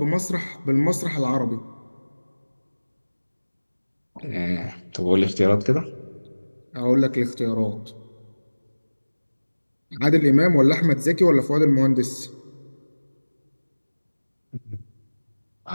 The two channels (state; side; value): inverted; both; correlation -1.00